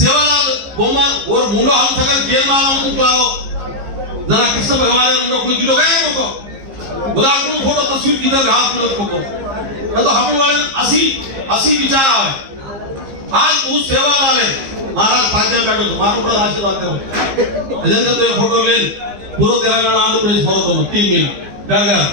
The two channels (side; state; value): left; late; 15 ms